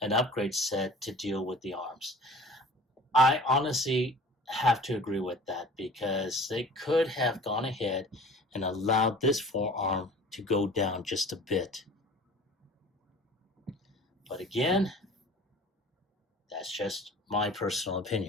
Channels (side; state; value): both; normal; correlation 0.44